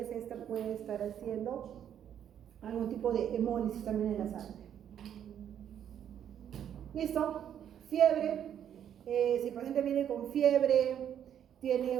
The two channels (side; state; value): left; quieter; 9.5 dB